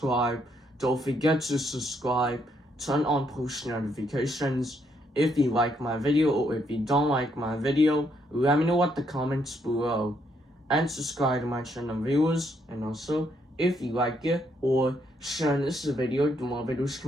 Don't forget to subscribe, turn on post notifications. If you like my video or if you don't like my video, let me know at the comments below. And subscribe to my channel viewers. And also, if you like it or share this video, the more videos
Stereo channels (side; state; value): both; normal; correlation 0.74